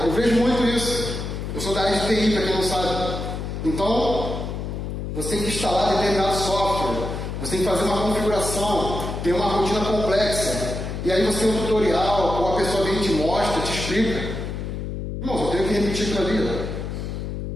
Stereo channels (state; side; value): noise; left; hum, 5 dB below the sound